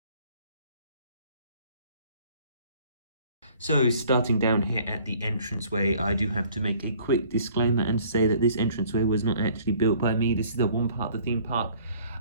So starting down here at the entranceway, I do have to make a quick disclaimer and say that this entranceway was not actually built by me. This is the one part of the theme park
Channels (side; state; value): both; inverted; correlation -0.55